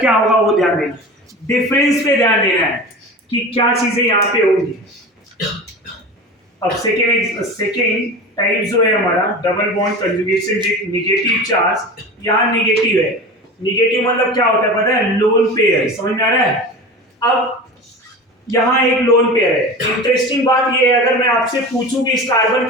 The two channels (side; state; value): both; normal; correlation 0.32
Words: क्या होगा वो ध्यान देना, डिफरेंस पे ध्यान देना है कि क्या चीजें यहाँ पे होंगी। अब सेकेंड टाइप जो है हमारा double bond conjugation with negative charge, यहाँ नेगेटिव है। नेगेटिव मतलब क्या होता है पता है, लोन पेयर, समझ में आ रहा है। अब यहाँ एक लोन पेयर है। इंटरेस्टिंग बात ये है, अगर मैं आपसे पूछूं कि इस कार्बन